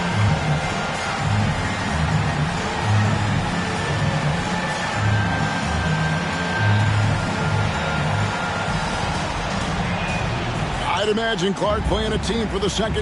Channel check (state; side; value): identical; both; correlation 1.00